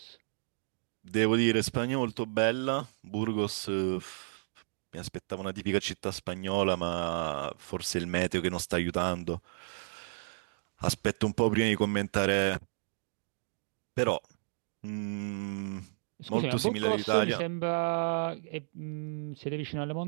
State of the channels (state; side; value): silent; left; digital silence